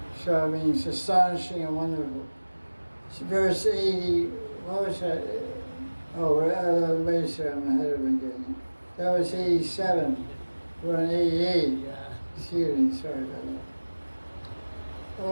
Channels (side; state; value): both; inverted; correlation -1.00